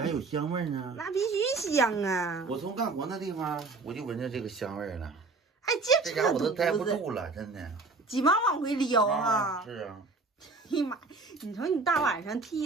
还有香味呢。那必须香啊！我从干活那地方我就闻着这个香味了。哎，这家我都待不肚子住了，真的。急忙往回撩啊！是啊。哎呀妈，你瞅你大晚上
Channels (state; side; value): quieter; left; 3.7 dB